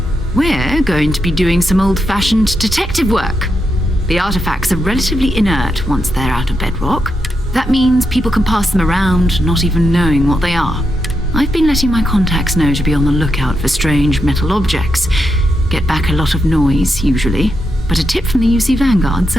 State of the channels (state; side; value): normal; both; correlation 0.84